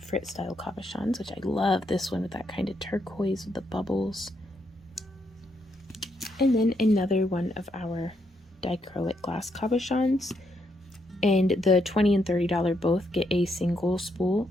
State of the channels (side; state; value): both; normal; correlation 0.77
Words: style cabochons, which I love this one with that kind of turquoise with the bubbles. And then another 1 of our dichroic glass cabochons. And the $20 and $30 both get a single spool